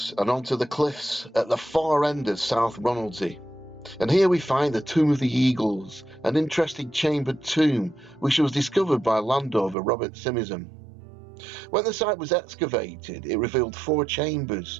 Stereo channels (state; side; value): drops out; left; at 9.8 s